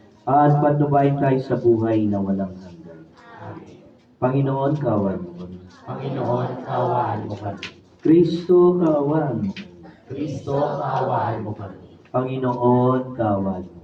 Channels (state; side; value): identical; both; correlation 1.00